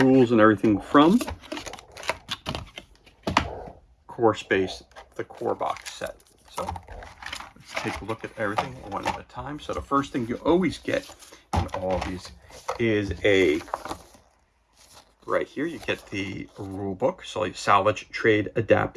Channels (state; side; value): identical; both; correlation 1.00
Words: and everything from Core Space, the Core box set. So take a look at everything one at a time. So the first thing you always get in all of these is right here, you get the rule book. So like salvage, trade,